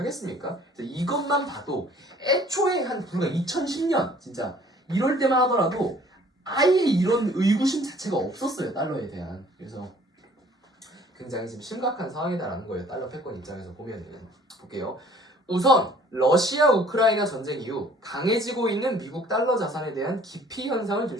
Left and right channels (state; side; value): normal; both; correlation 0.55